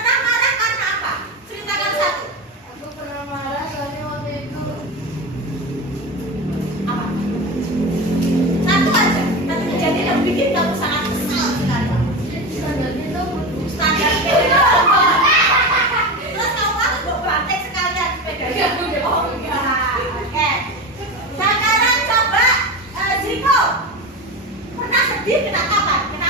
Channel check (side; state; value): both; normal; correlation 0.23